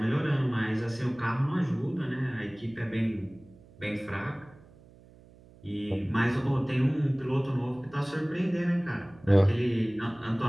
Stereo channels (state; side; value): noise; right; hum, 24 dB below the sound